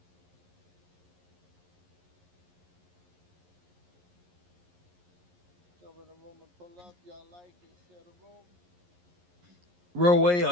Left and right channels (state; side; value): late; left; 11 ms